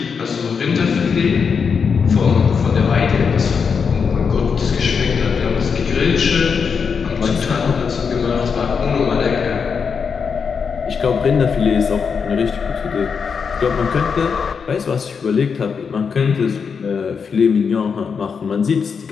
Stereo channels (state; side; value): quieter; right; 6.0 dB